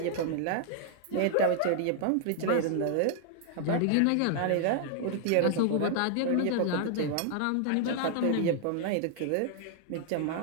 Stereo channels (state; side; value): different; both; correlation 0.00